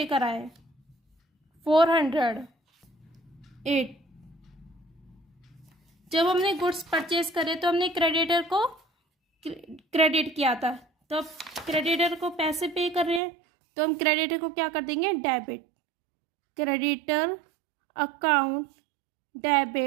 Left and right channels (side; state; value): left; drops out; at 13.2 s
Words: कराए 408। जब हमने गुड्स परचेज करे तो हमने क्रेडिटर को क्रेडिट किया था, तो अब क्रेडिटर को पैसे पे कर रहे हैं, तो हम क्रेडिटर को क्या कर देंगे, debit. Creditor account